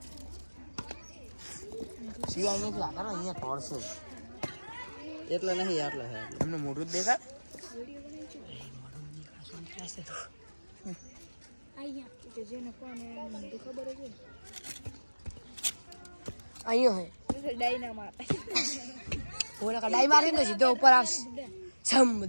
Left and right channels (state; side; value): inverted; both; correlation -1.00